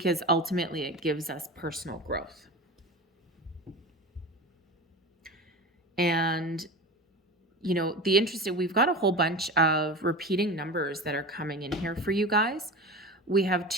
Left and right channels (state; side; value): normal; both; correlation 0.30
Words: ultimately it gives us personal growth. And you know, we've got a whole bunch of repeating numbers that are coming in here for you guys. We have